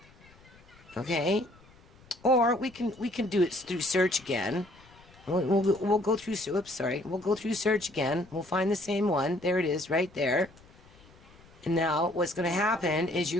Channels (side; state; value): left; noise; rumble, 26 dB below the sound